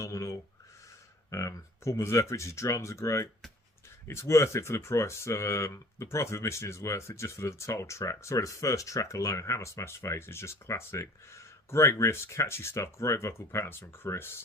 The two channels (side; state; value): both; normal; correlation 0.49